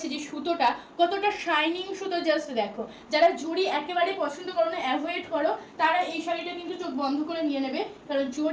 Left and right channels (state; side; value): identical; both; correlation 1.00